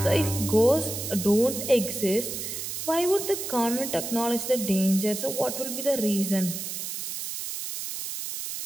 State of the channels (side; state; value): right; noise; hiss, 6 dB below the sound